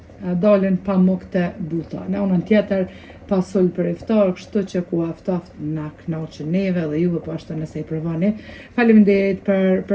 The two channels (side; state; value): both; identical; correlation 1.00